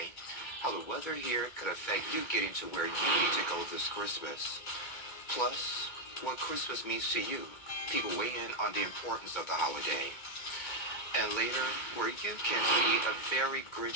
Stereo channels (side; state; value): right; late; 2.2 ms